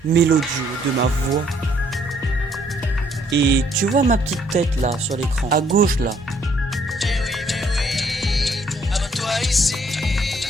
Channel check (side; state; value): both; normal; correlation 0.66